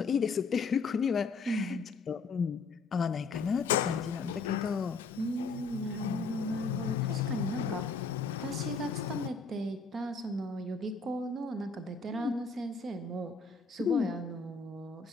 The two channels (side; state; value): right; quieter; 4.2 dB